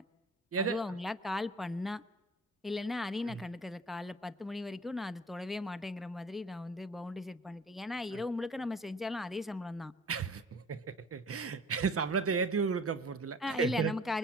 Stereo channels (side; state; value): both; normal; correlation 0.48